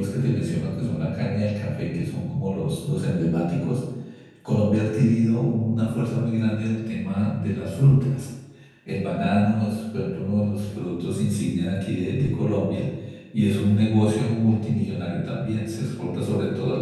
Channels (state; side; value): identical; both; correlation 1.00